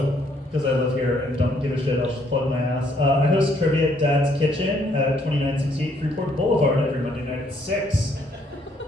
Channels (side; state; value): both; normal; correlation 0.68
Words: because I live here and don't give a shit, I'll just plug my ass. I host trivia at Dad's Kitchen at 2968 Freeport Boulevard every Monday night at 6.